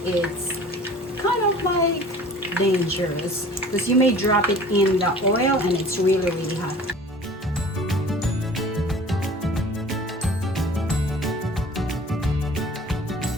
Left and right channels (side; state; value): both; normal; correlation 0.45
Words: it's kind of like dangerous because you may drop it in the oil and it's really hot.